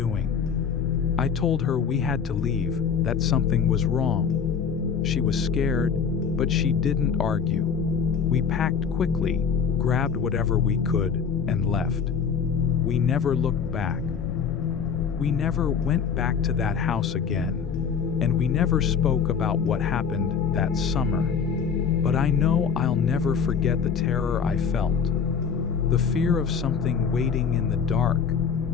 I told her we had to leave, that something was wrong. She was scared, but she didn't argue. We packed quickly, grabbed whatever we could, and left. We never looked back. We never went back to that house again, and we never spoke about what happened that summer. But I know I'll never forget the terror I felt. The fear of something waiting in the dark.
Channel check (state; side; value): quieter; right; 6.5 dB